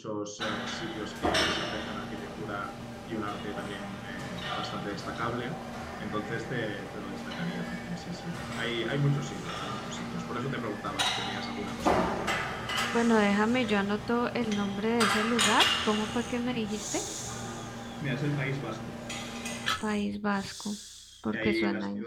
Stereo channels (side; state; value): both; identical; correlation 1.00